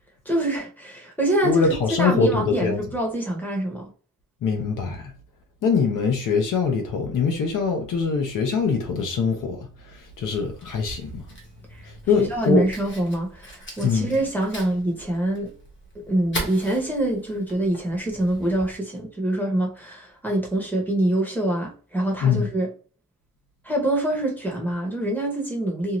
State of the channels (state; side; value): normal; both; correlation 0.53